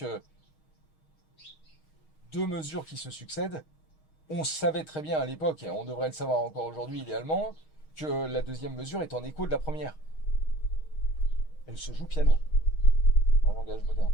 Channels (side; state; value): right; late; 6.4 ms